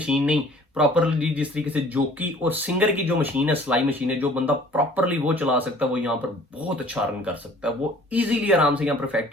नहीं, प्रॉपरली जिस तरीके से जोकी और सिंगर की जो मशीन है, सिलाई मशीन है, जो बंदा प्रॉपरली वो चला सकता है वो यहाँ पर बहुत अच्छा अर्न कर सकता है। वो इजीली आराम से यहाँ पर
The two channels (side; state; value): both; normal; correlation 0.52